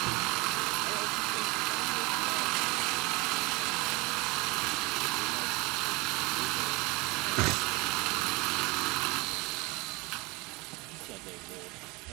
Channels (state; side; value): quieter; left; 25.1 dB